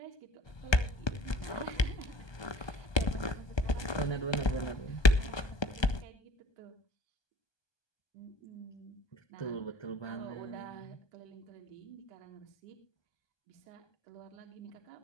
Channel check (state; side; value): late; right; 1.2 ms